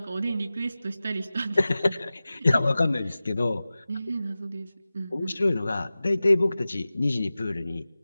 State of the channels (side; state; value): both; inverted; correlation -0.96